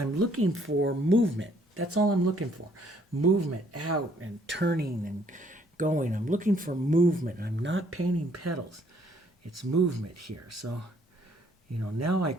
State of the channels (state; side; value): normal; both; correlation 0.64